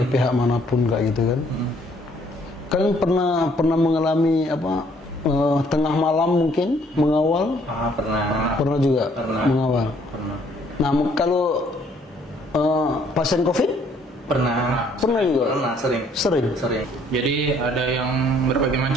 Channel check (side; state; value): both; normal; correlation 0.63